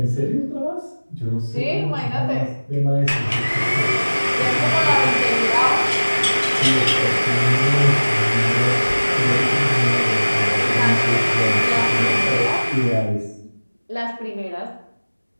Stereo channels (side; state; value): both; inverted; correlation -1.00